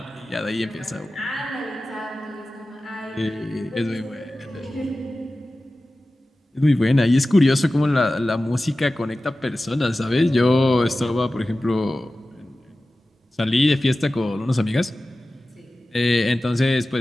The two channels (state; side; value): normal; both; correlation 0.95